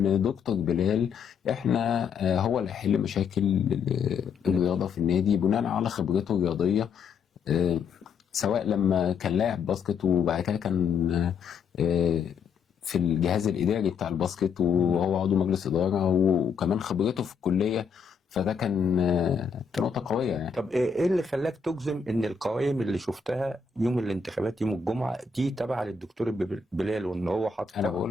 دكتور بلال احنا هو اللي هيحل مشاكل الرياضه في النادي بناء على خبرته الرياضيه، سواء لما كان لاعب باسكت وبعد كده كان في الجهاز الاداري بتاع الباسكت وهو عضو مجلس اداره، وكمان خبرته في الكليه. فده كان نقطه قويه يعني. طب ايه اللي خلاك تجزم ان القوائم اللي شفتها يوم الانتخابات يوم الجمعه دي تابعه للدكتور بلال، وان هو حاطط؟ انا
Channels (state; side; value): quieter; right; 5.8 dB